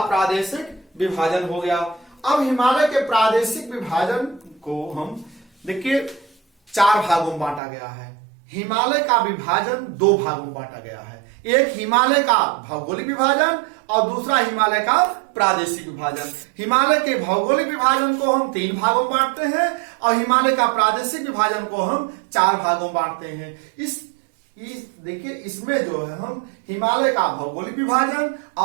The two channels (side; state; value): left; drops out; at 7.6 s